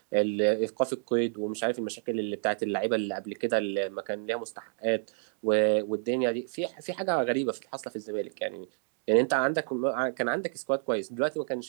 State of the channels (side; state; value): left; silent; digital silence